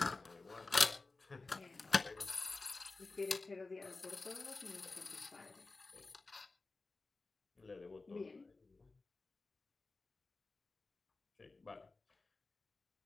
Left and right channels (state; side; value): quieter; right; 3.6 dB